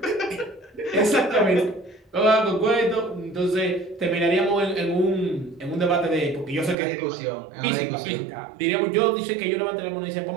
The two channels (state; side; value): drops out; left; at 6.8 s